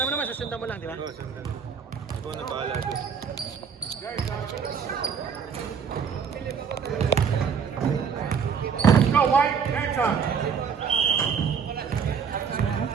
mo naman, susundan mo lang, di ba? Oo, sundan. Ikaw na bahala doon. Go, White. Game time.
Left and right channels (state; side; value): quieter; left; 6.6 dB